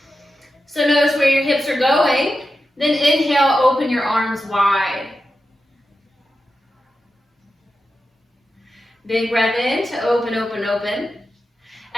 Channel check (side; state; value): both; normal; correlation 0.90